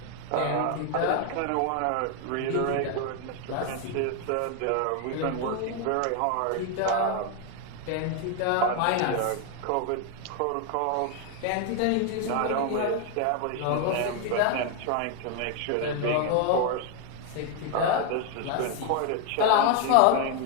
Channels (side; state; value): both; different; correlation 0.01